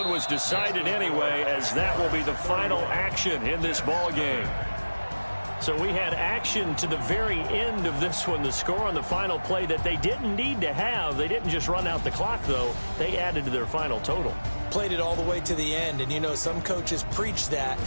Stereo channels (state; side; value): inverted; both; correlation -1.00